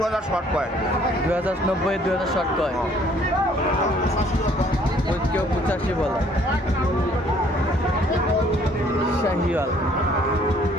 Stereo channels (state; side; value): normal; both; correlation 0.61